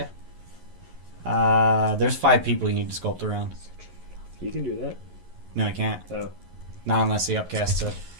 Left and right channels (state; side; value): late; left; 11 ms